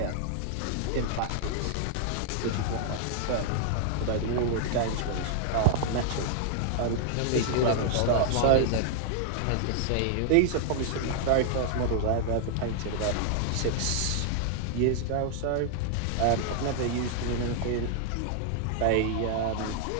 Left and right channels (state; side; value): different; both; correlation 0.00